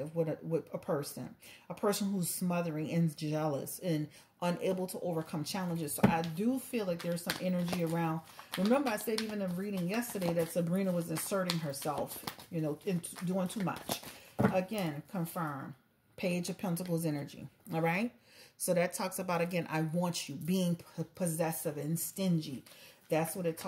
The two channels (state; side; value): identical; both; correlation 1.00